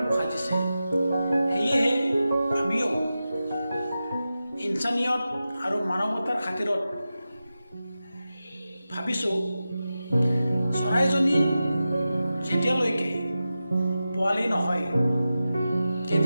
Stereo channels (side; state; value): both; inverted; correlation -0.93